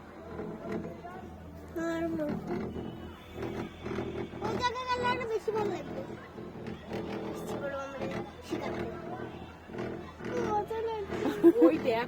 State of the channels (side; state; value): both; identical; correlation 1.00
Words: ওই জায়গায় গেলে আরো বেশি ভালো লাগবে। ওই দেখ